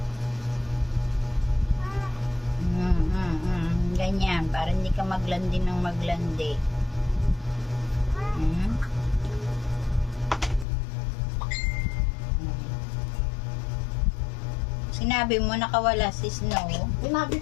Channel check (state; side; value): drops out; right; at 10.7 s